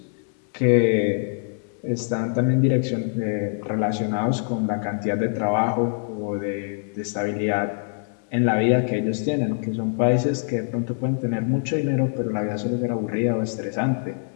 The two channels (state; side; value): silent; right; 63 dB below the other